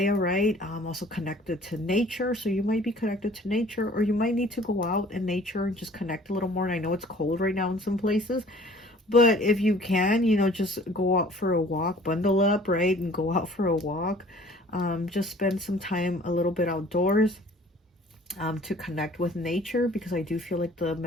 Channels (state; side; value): normal; both; correlation 0.51